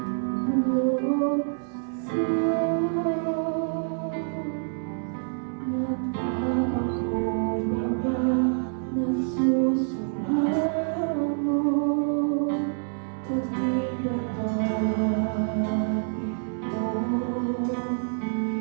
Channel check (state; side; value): silent; left; digital silence